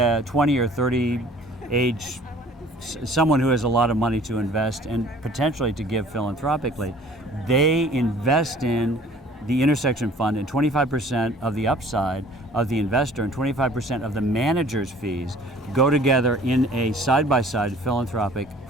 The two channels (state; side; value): normal; both; correlation 0.52